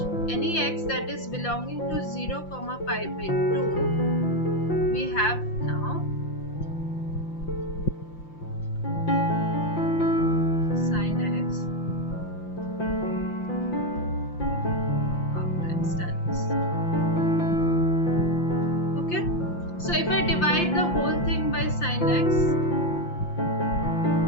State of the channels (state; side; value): late; right; 5.8 ms